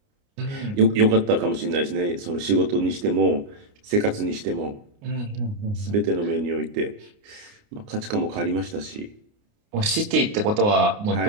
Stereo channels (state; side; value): late; left; 29 ms